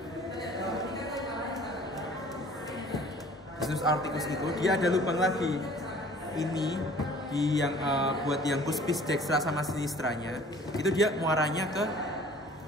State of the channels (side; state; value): both; normal; correlation 0.50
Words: dia ada lubang lagi. Ini di yang buat yang cuspis dextra sama sinistranya itu dia muaranya ke